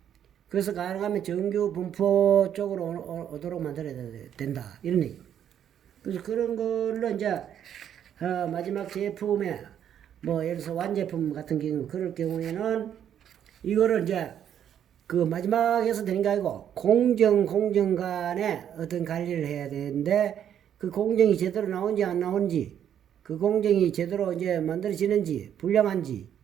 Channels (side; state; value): left; quieter; 9.6 dB